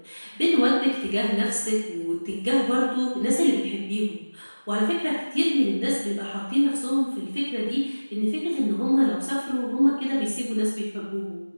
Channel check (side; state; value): both; inverted; correlation -1.00